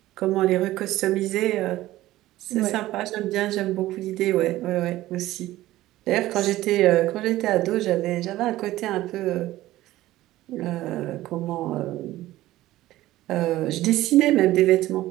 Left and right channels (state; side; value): quieter; left; 15.9 dB